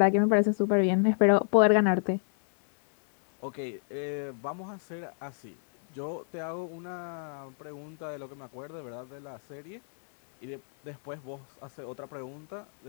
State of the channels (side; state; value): right; silent; 58 dB below the other